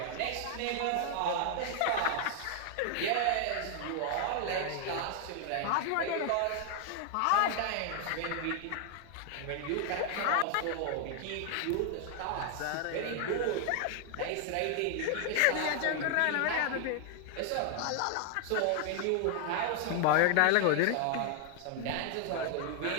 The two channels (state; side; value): different; both; correlation 0.00